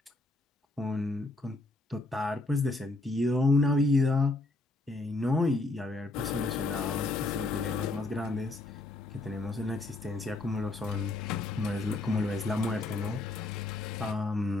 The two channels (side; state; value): right; quieter; 3.0 dB